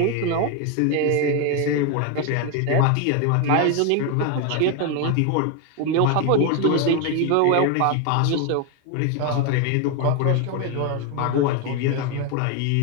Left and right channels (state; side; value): different; both; correlation 0.01